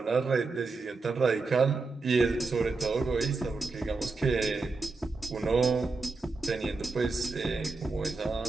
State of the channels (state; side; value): quieter; left; 3.9 dB